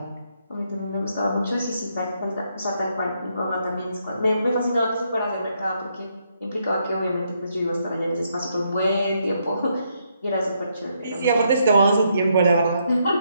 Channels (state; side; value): inverted; both; correlation -0.76